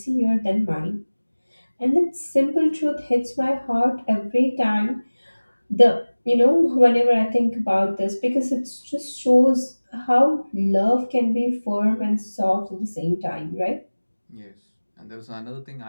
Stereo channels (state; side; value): inverted; both; correlation -1.00